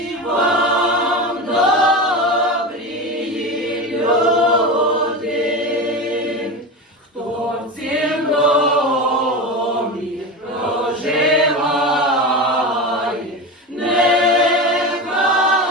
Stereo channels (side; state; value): both; normal; correlation 0.24